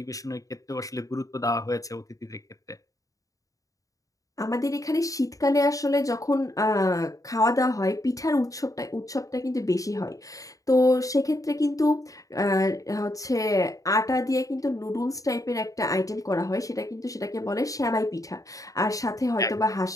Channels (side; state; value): right; late; 0.16 ms